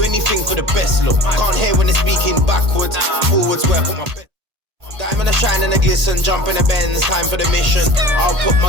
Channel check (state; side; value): late; left; 1.8 ms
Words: anything for the best look. Can't hear when they're speaking backwards. Forwards where I put my best. Diamond a shine and a glisten, jump in the Benz, time for the mission. I'll put